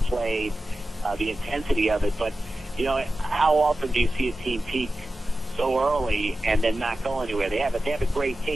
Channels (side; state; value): both; normal; correlation 0.93